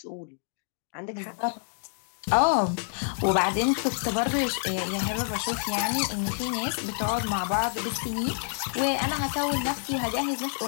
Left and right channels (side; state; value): right; silent; 60 dB below the other